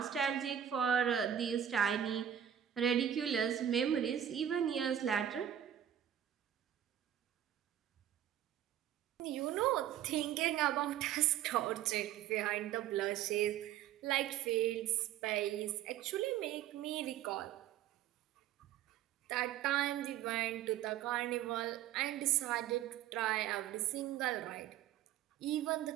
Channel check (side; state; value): left; quieter; 10.6 dB